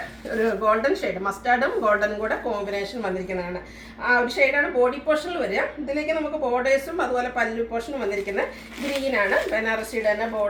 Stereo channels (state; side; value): identical; both; correlation 1.00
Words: ഒരു ഗോൾഡൻ ഷെയ്ഡ്, മസ്റ്റാർഡും ഗോൾഡനും കൂടെ കോമ്പിനേഷൻ വന്നിരിക്കുന്നതാണ്. ആ ഒരു ഷെയ്ഡാണ് ബോഡി പോർഷനിൽ വരിക. ഇതിലേക്ക് നമുക്ക് ബോർഡേഴ്സും അതുപോലെ പല്ലു പോർഷനും വന്നിരിക്കുന്നത് ഗ്രീനാണ്. ബനാറസിയുടെ തന്നെ